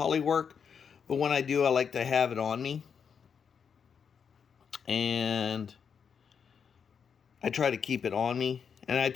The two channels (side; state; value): right; quieter; 6.8 dB